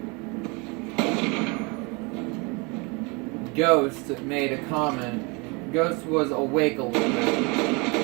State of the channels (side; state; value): left; quieter; 29.5 dB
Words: Ghost made a comment. Ghost was awake a little bit